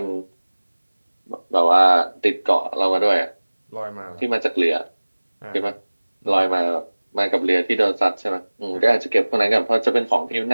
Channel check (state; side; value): inverted; both; correlation -1.00